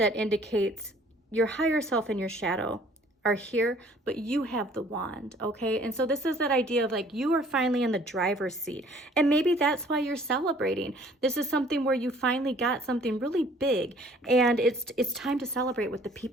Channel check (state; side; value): normal; both; correlation 0.56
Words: indicates your higher self and your shadow are here, but you have the wand, okay? And so this is that idea of like you are finally in the driver's seat, and maybe that's why you're celebrating. This is something where you finally got something really big, and it's time to celebrate with the